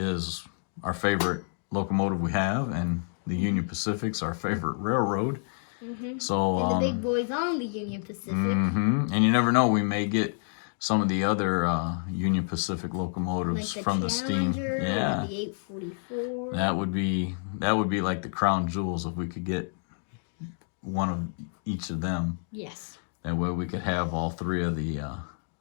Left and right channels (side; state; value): right; silent; digital silence